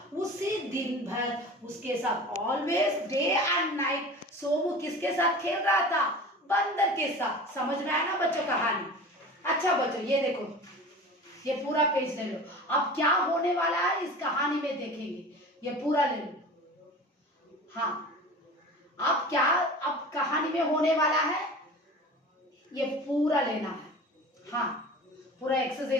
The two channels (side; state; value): both; normal; correlation 0.37